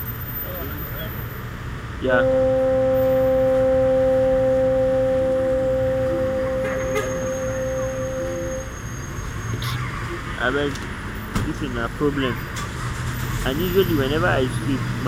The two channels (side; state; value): both; identical; correlation 1.00